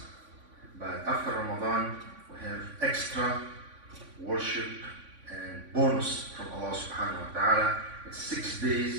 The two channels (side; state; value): left; late; 3.5 ms